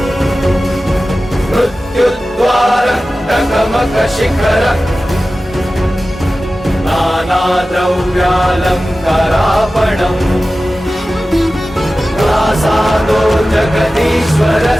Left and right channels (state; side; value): normal; both; correlation 0.95